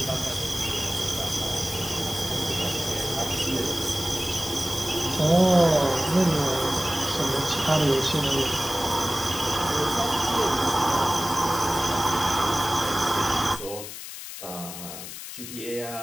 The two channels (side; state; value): left; noise; hiss, 10 dB below the sound